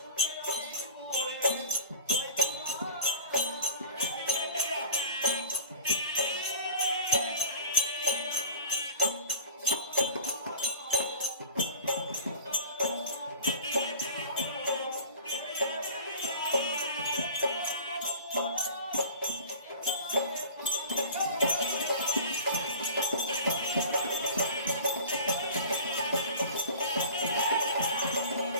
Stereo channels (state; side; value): inverted; both; correlation -0.39